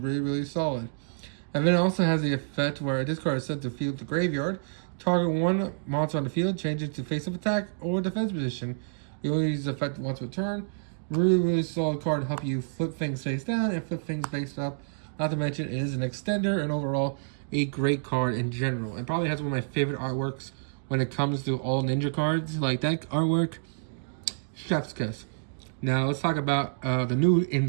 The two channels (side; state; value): left; silent; digital silence